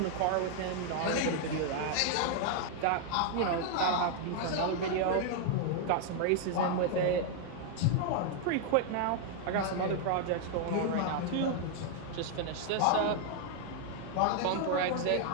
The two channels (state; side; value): different; both; correlation 0.00